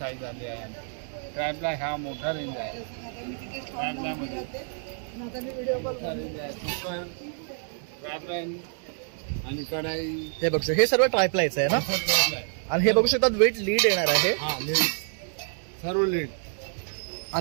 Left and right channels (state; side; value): silent; left; 60 dB below the other